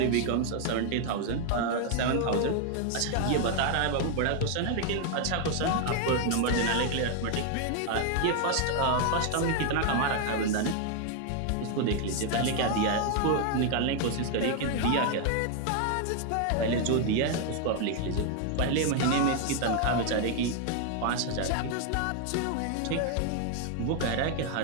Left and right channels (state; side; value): different; both; correlation 0.01